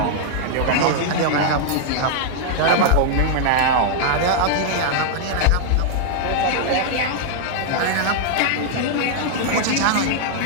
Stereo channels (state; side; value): different; both; correlation -0.01